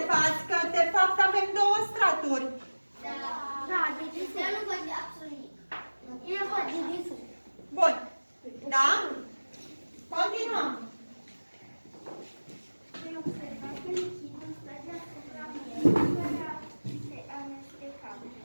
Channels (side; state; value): both; inverted; correlation -1.00